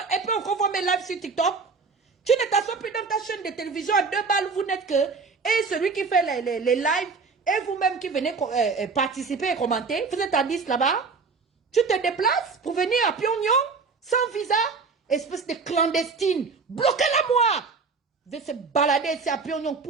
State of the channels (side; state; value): left; quieter; 4.7 dB